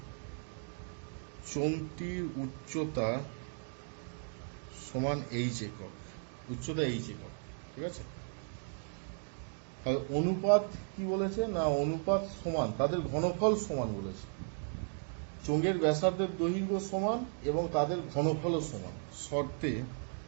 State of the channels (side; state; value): left; silent; 54 dB below the other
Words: চোঙটির উচ্চতা সমান এইচ একক, উচ্চতা এইচ একক, ঠিক আছে। তাহলে অনুপাত কি বলেছে না, অনুপাত সমান, তাদের ঘনফল সমান বলেছে। চোঙের ব্যাসার্ধের দৈর্ঘ্য সমান এবং তাদের ঘনফলও সমান, শর্তে